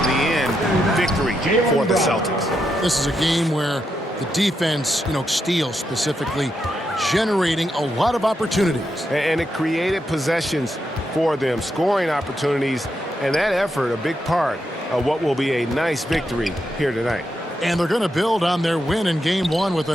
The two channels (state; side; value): normal; both; correlation 0.83